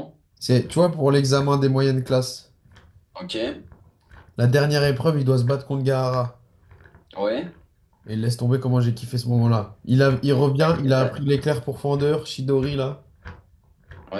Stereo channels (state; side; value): identical; both; correlation 1.00